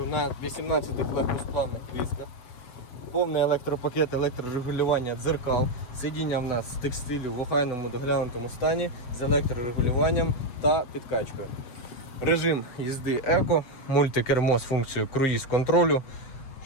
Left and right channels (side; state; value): right; late; 8.0 ms